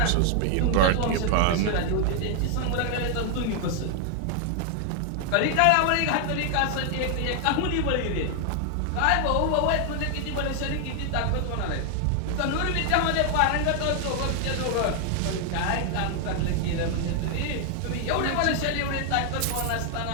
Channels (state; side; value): different; both; correlation 0.00